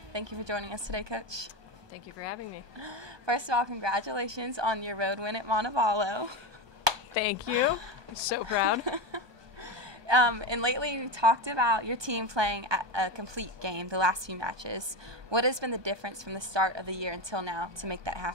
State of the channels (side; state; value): left; late; 1.2 ms